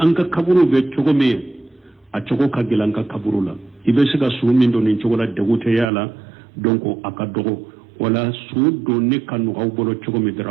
ka kaburu be jogo me a jogo ka gilanka kaburu la ibe siga su min do nin jogola degute yala donc aka dogo wala sudo ni kanu bolo chogo mi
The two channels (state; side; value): drops out; left; at 5.9 s